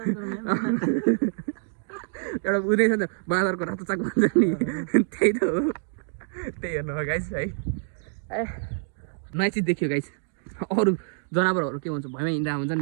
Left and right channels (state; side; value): silent; left; digital silence